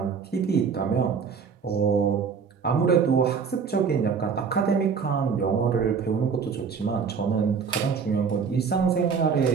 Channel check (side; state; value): left; quieter; 6.0 dB